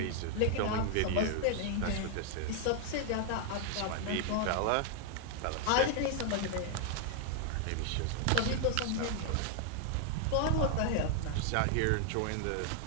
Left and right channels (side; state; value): both; different; correlation 0.00